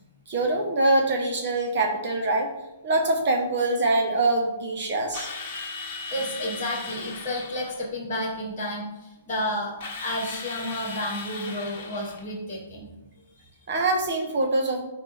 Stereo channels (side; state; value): both; inverted; correlation -0.55